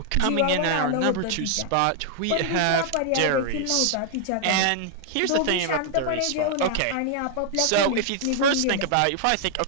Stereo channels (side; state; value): both; different; correlation -0.01